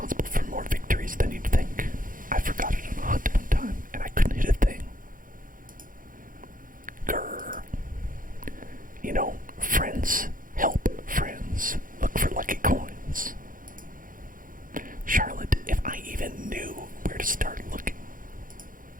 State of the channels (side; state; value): left; late; 0.40 ms